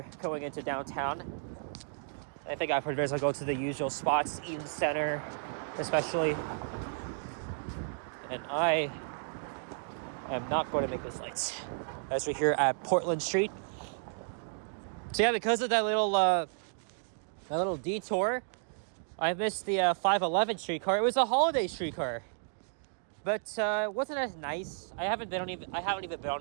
going into downtown. I think I've heard I'll go to the usual spots, Eden Center especially, and I am not going to make this lights as we're here at Portland Street. So yeah, because of that little detour, I missed the 511 streetcar. It was a holiday streetcar, but it wasn't as nice. I haven't even been on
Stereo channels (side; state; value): left; silent; digital silence